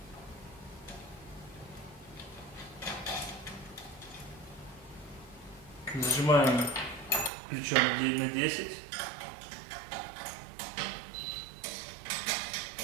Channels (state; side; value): drops out; left; at 7.3 s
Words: Зажимаем ключом на 10.